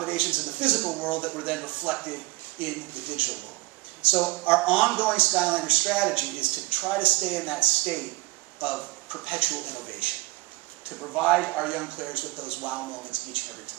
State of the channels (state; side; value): quieter; left; 21.5 dB